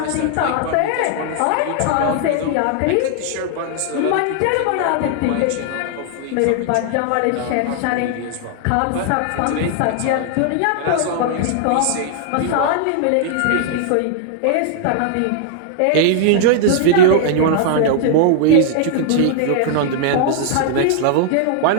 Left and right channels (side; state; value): both; different; correlation -0.01